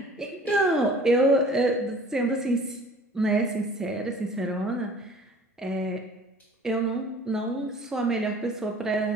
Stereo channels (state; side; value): normal; both; correlation 0.49